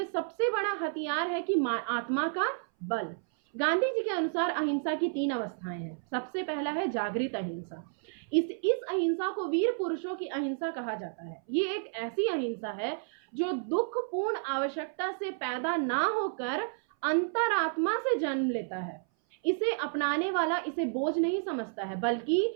सबसे बड़ा हथियार है कि आत्मा का बल। गांधी जी के अनुसार अहिंसा की 3 अवस्थाएं हैं। सबसे पहला है जागृत अहिंसा। इस अहिंसा को वीर पुरुषों की अहिंसा कहा जाता है। ये एक ऐसी अहिंसा है जो दुखपूर्ण आवश्यकता से पैदा ना होकर अंतरात्मा से जन्म लेता है। इसे अपनाने वाला इसे बोझ नहीं समझता है बल्कि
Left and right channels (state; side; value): silent; left; 57 dB below the other